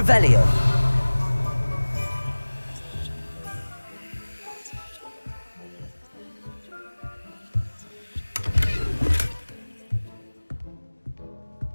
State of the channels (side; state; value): both; inverted; correlation -1.00